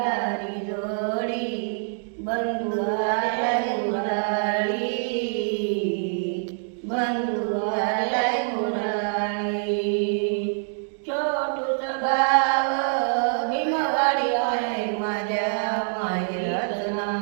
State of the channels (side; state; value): left; silent; 62 dB below the other